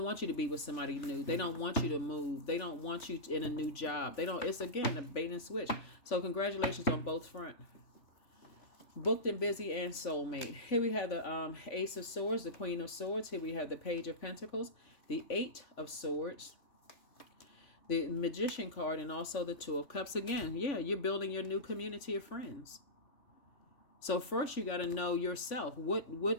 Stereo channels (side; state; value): right; late; 3.5 ms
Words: want you to be with somebody new. They don't want you to move. They don't want you in a new job. They don't. It's again a bait and switch. So congratulations on both front. Booked and busy and soulmate. Here we have the Ace of Swords, the Queen of Swords. Here we have the Page of Pentacles, the Eight of Swords, the Magician card, and also the Two of Cups. Again, yeah, you're building your new community of friends. So first you got to know yourself.